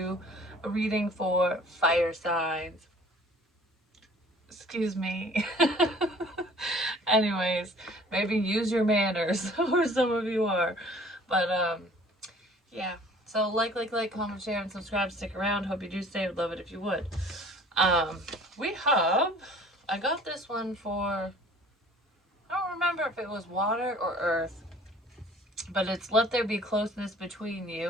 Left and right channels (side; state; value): both; normal; correlation 0.51